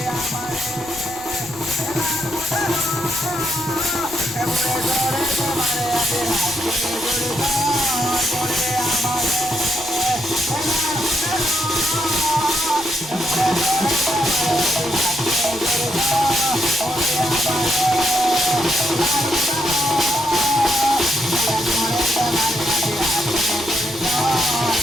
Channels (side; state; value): right; noise; rumble, 19 dB below the sound